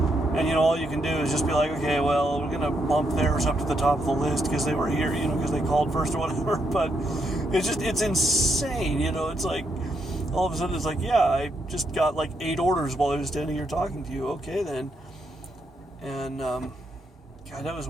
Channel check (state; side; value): normal; both; correlation 0.78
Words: And, all you can do is just be like, okay, well, we're going to bump theirs up to the top of the list because they were here, because they called first or whatever. But it's insane, it's all of a sudden it's yeah, I just got 8 orders while I was standing here talking to you. Okay, then. And, God, that was